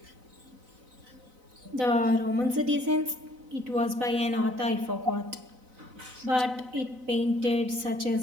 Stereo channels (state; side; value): late; left; 4.0 ms